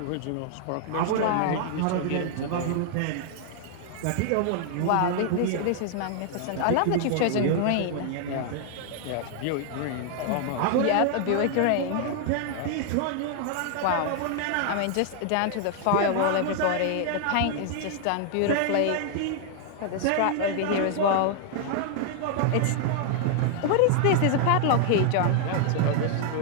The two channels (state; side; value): different; both; correlation 0.00